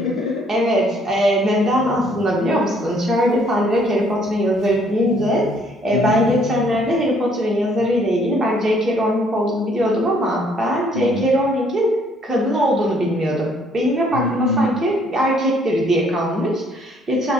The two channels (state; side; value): normal; both; correlation 0.64